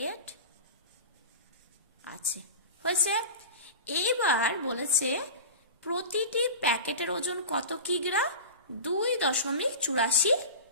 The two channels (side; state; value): both; inverted; correlation -0.31